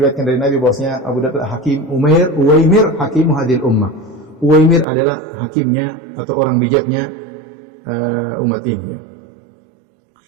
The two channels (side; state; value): left; drops out; at 4.9 s